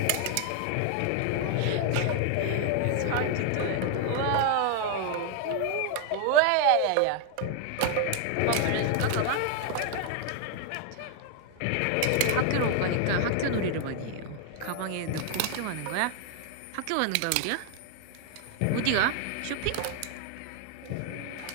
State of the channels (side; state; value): both; different; correlation 0.00